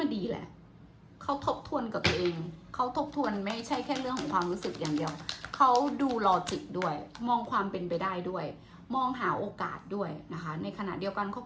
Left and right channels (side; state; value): both; identical; correlation 1.00